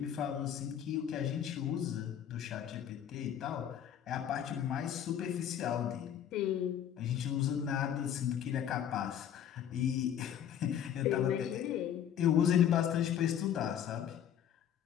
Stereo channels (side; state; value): right; quieter; 9.6 dB